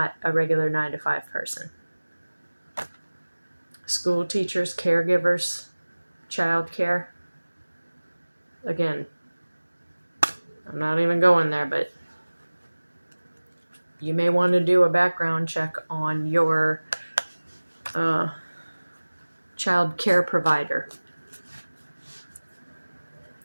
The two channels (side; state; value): both; inverted; correlation -1.00